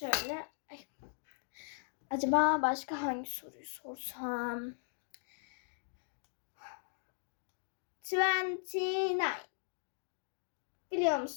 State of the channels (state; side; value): silent; right; digital silence